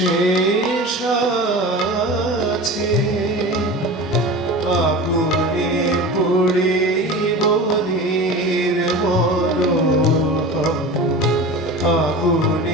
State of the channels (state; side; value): normal; both; correlation 0.32